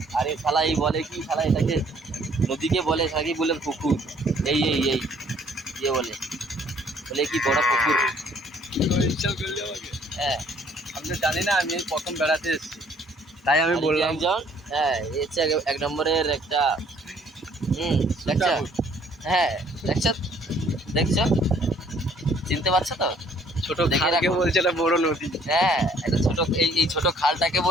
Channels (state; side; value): normal; both; correlation 0.60